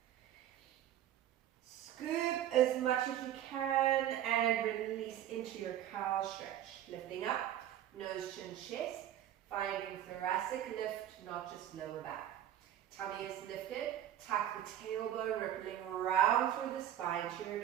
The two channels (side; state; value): left; quieter; 11.5 dB